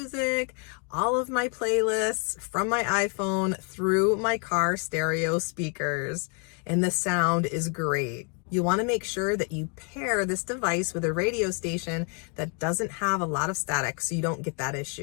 all of my playlists from my iPhone through my car stereo speakers, and the sound is great. You want to make sure that you pair this device with a radio station that doesn't have a lot of static so you don't get that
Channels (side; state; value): right; quieter; 38.6 dB